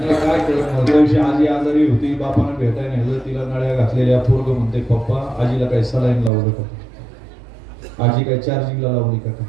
कळत. आजी आजारी होती, बापानं भेटाय नाही, तिला नळ्या घातलेल्या. पोरग म्हणते पप्पा आजीला काही सलाईन लावलं का, आजी काय चार्जिंगला लावली का.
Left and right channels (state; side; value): drops out; left; at 6.3 s